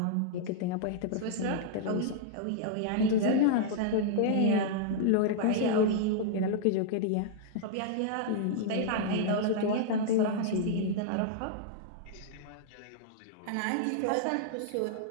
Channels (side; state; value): both; different; correlation -0.01